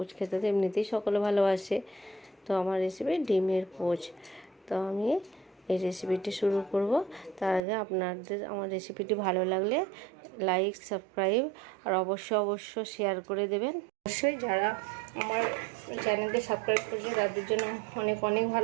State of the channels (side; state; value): left; drops out; at 7.6 s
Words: খেতে তো এমনিতেই সকলে ভালোবাসে। তো আমার রেসিপি ডিমের পোচ। তো আমি এই রেসিপিটি শুরু করব। তার আগে আপনাদের আমার রেসিপিটি ভালো লাগলে লাইক, সাবস্ক্রাইব আর অবশ্যই শেয়ার করে দেবেন। অবশ্যই যারা আমার চ্যানেলকে সাবস্ক্রাইব করেছে তাদের জন্য অনেক অনেক